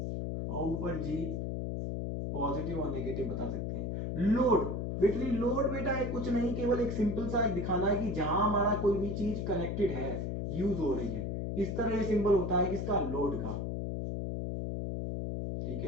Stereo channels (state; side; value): noise; left; hum, 2 dB below the sound